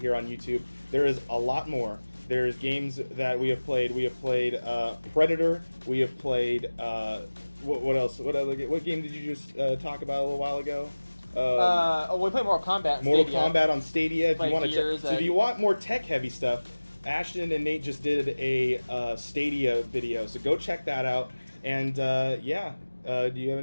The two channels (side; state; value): both; inverted; correlation -1.00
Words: here on YouTube. There is a lot more. There's games that we have played. We have played Predator. We have played what else? What game did you just talk about a little while ago? We played Mortal Kombat. Mortal Kombat on Stadia. If you want to, if you want more tech-heavy stuff, Ashton and Nate just did a Stadia video, so go check that out. And do you have